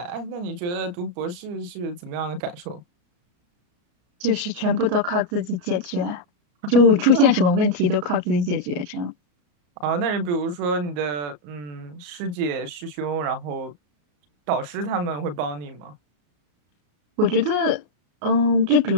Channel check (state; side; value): late; left; 34 ms